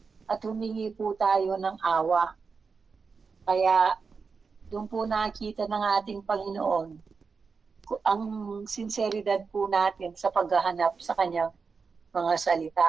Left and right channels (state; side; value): quieter; left; 5.1 dB